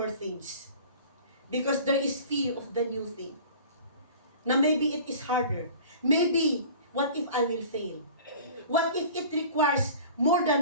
things. Because there is fear of the new thing. Na maybe it is harder. Maybe, what if I will fail? What if it requires more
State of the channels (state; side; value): inverted; both; correlation -0.43